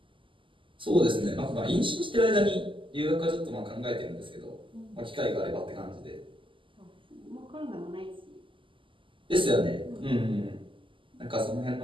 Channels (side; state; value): left; late; 0.25 ms